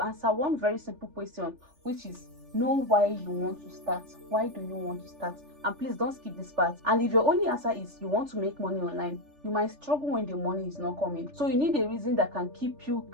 answer one very simple question, which is know why you want to start. Why do you want to start? And please don't skip this part. And if your only answer is you want to make money online, you might struggle when the money is not coming. So you need a reason that can keep you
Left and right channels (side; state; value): left; late; 3.4 ms